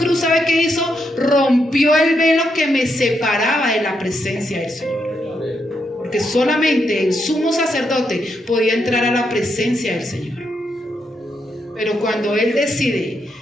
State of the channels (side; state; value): both; normal; correlation 0.80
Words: ¿sabe qué hizo? Rompió el velo que me separaba de la presencia del Señor. Porque solamente el sumo sacerdote podía entrar a la presencia del Señor. Pero cuando Él decide